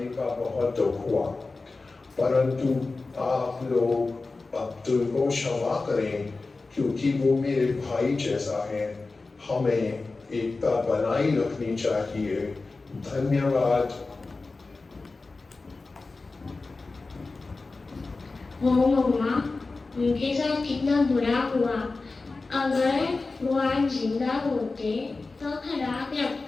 का बहुत दुख हुआ, परंतु आप लोग अब्दुल को क्षमा करें, क्योंकि वो मेरे भाई जैसा है। हमें एकता बनाई रखनी चाहिए। धन्यवाद। हो मम्मा, उनके साथ कितना बुरा हुआ। अगर वो आज जिंदा होते तो खराब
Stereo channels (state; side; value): quieter; right; 3.7 dB